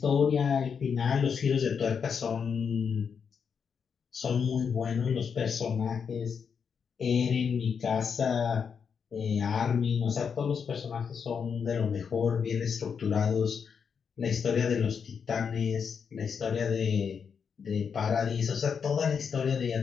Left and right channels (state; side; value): quieter; right; 6.5 dB